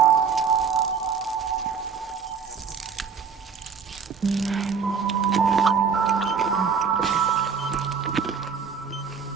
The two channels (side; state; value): left; quieter; 6.1 dB